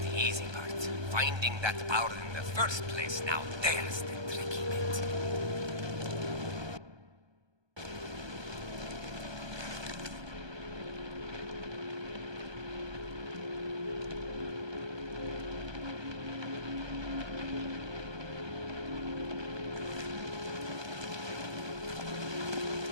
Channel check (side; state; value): left; late; 1.2 ms